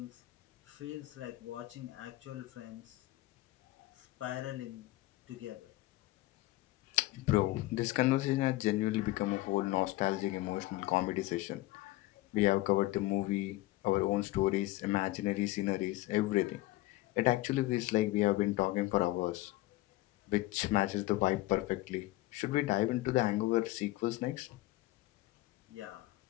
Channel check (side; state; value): right; quieter; 18.2 dB